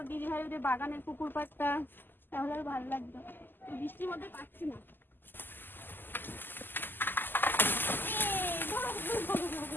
দিদি ভাই ওদের বাগানের পুকুর পাড়টা, তাহলে আর ভালো লাগতো। বৃষ্টির মধ্যে পাচ্ছি না।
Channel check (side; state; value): right; late; 0.092 ms